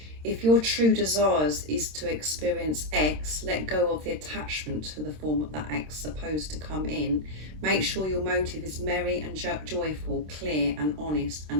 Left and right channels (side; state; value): left; late; 26 ms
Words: If your true desires is to experience X, let go of the attachment to the form that X is supposed to come in. Make sure your motive is merry and joyful, clear and honest,